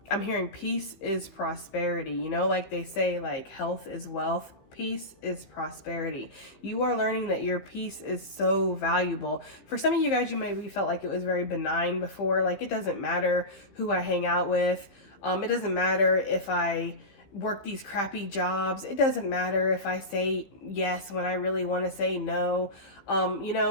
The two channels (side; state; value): right; late; 15 ms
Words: I'm hearing peace is prosperity. You know, like they say, like health is wealth. Peace is prosperity. You are learning that your peace is so valuable. For some of you guys, you maybe felt like it was very benign before. Like, it doesn't matter who I hang out with. It doesn't matter if I work these crappy jobs. It doesn't matter if I say yes when I really want to say no. You